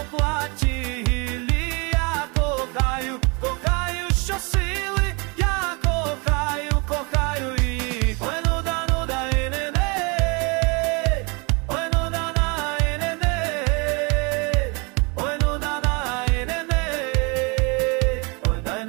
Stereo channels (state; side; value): quieter; left; 30.3 dB